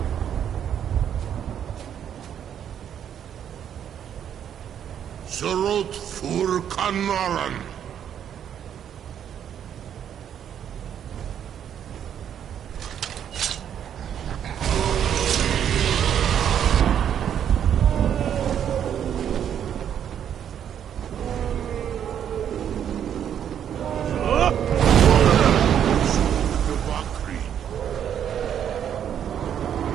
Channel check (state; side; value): quieter; left; 9.2 dB